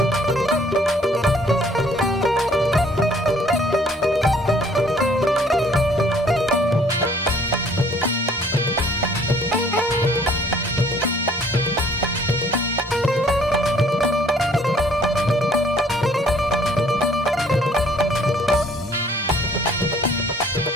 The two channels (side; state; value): both; normal; correlation 0.58